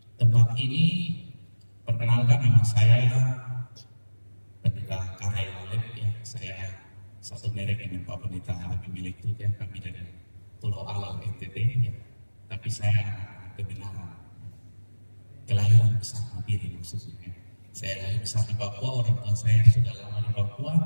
tempat ini. Perkenalkan, nama saya Pendeta Karel Alep, ya. Saya satu merek dengan Pak Pendeta Habib milik itu, ya. Kami dari Pulau Alam NTT, ya. Tapi saya kebenaran kelahiran besar Mabiri maksudnya. Saya lahir besar di Papua, orang tua saya sudah lama di Papua,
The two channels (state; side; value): inverted; both; correlation -1.00